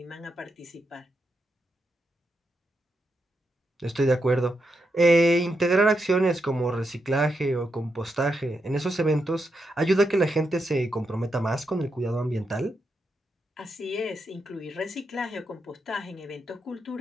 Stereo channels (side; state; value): both; normal; correlation 0.84